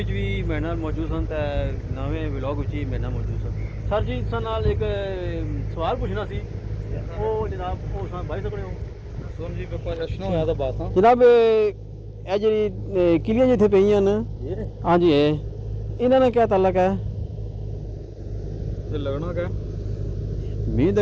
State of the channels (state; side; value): identical; both; correlation 1.00